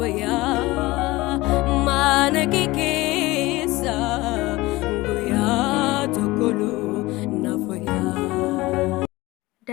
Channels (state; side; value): quieter; right; 20.1 dB